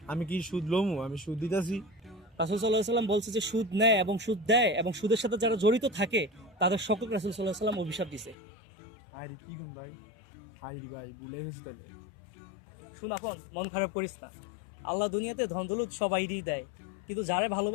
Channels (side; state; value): right; drops out; at 8.3 s